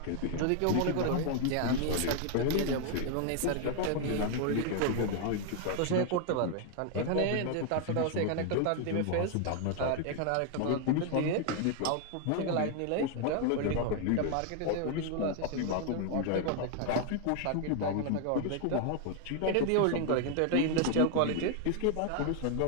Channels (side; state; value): both; different; correlation 0.00